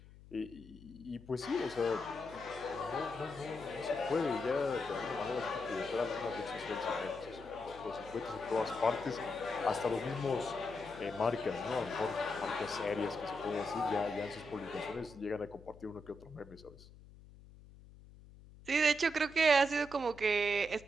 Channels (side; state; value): left; noise; hum, 20 dB below the sound